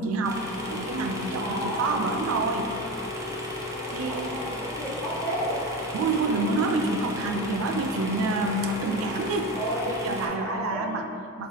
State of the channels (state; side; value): normal; both; correlation 0.22